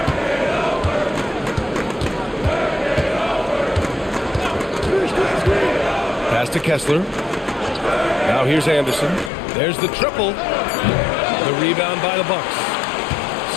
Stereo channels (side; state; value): right; drops out; at 9.3 s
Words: Pass to Kessler. Now here's Anderson. There's the triple. The rebound by the Bucks.